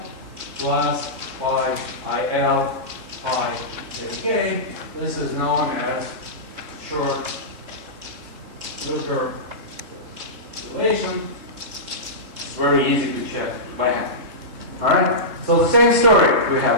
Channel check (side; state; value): left; late; 3.8 ms